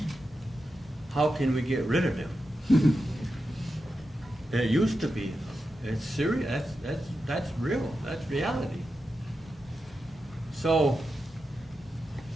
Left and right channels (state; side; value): normal; both; correlation 0.89